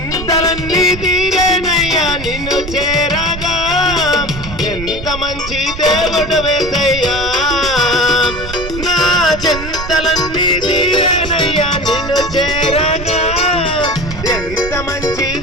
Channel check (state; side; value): noise; right; rumble, 10 dB below the sound